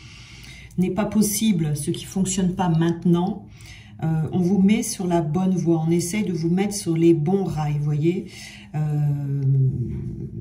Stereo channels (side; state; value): both; identical; correlation 1.00